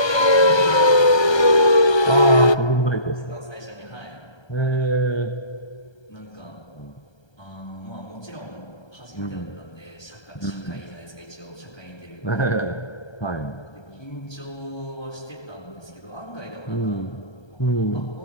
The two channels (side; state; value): right; late; 1.3 ms